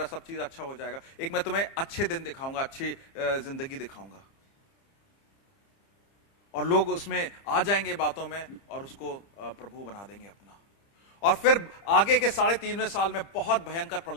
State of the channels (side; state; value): right; late; 30 ms